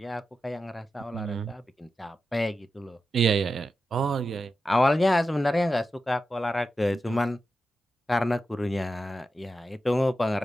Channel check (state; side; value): normal; both; correlation 0.90